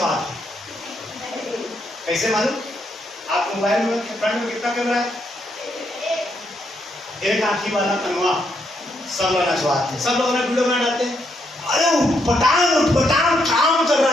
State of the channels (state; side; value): normal; both; correlation 0.77